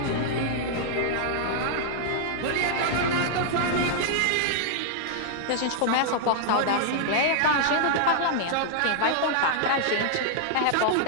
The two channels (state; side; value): different; both; correlation -0.01